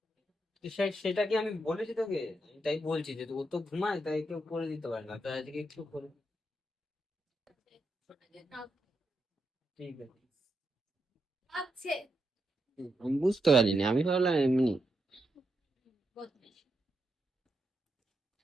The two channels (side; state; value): both; normal; correlation 0.83